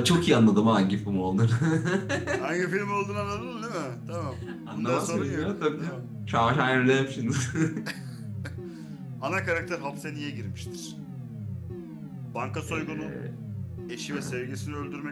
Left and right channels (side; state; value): both; identical; correlation 1.00